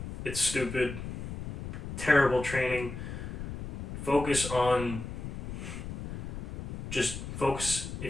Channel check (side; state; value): left; noise; rumble, 6 dB below the sound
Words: It's stupid. Terrible training. Focus on... Just focus.